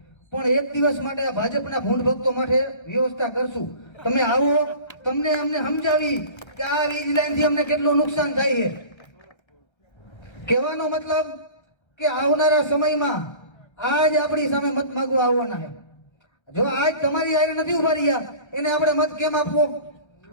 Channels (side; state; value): right; late; 1.3 ms